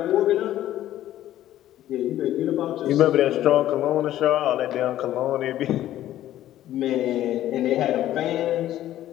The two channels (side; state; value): right; quieter; 13.1 dB